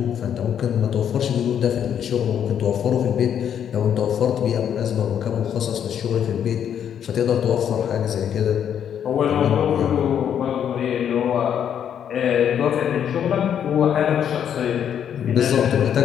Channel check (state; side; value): quieter; right; 9.0 dB